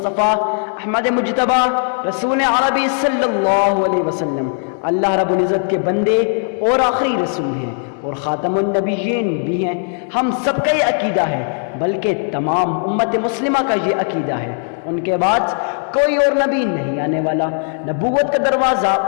احمد مجتبی رسول عربی صلی اللہ علیہ وسلم اللہ رب العزت کے بندے اور آخری رسول ہیں اور خاتم النبیین بھی ہیں۔ ہم سب کا یہ عقیدہ ہے، بلکہ تمام امت مسلمہ کا یہ عقیدہ ہے، ان کے بعد کوئی اور نبی نہیں آنے والا، نبوت کا دروازہ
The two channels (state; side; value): silent; right; 60 dB below the other